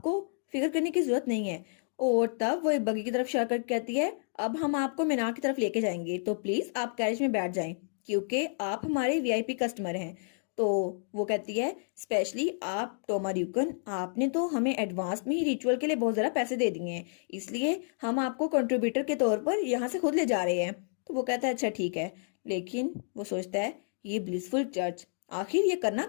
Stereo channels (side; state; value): right; silent; digital silence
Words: फिक्र करने की जरूरत नहीं है। और तब वो एक बगी की तरफ इशारा करके कहती है अब हम आपको मीनार की तरफ लेके जाएंगे तो प्लीज आप कैरेज में बैठ जाएं क्योंकि आप हमारे वीआईपी कस्टमर हैं। तो वो कहती है स्पेशली आप टोमा ड्यूकन, आपने तो हमें एडवांस में ही रिचुअल के लिए बहुत ज़्यादा पैसे दे दिए हैं, इसलिए हम आपको कंट्रीब्यूटर के तौर पर यहाँ से खुद ले जा रहे हैं। तो वो कहता है अच्छा ठीक है, लेकिन वो सोचता है ये ब्लिसफुल चर्च आखिर ये करना